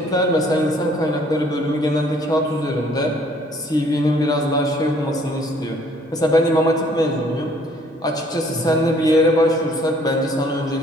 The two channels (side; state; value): both; normal; correlation 0.60